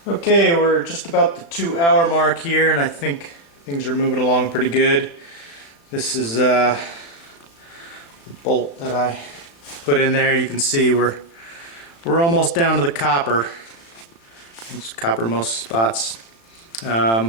Okay, we're just about the 2-hour mark here, and I think things are moving along pretty good. This is the bolt that I put in there. You can see we're almost down to the copper. It's copper most spots.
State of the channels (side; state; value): right; late; 35 ms